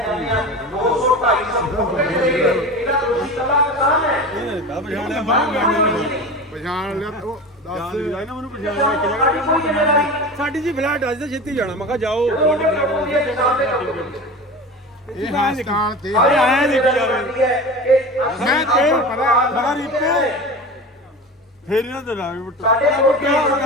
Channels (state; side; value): normal; both; correlation 0.31